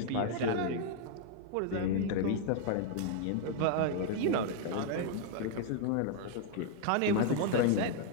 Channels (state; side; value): different; both; correlation 0.00